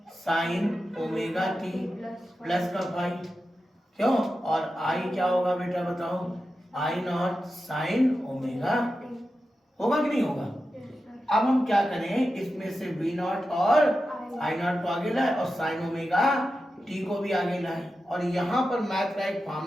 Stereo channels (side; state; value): both; normal; correlation 0.91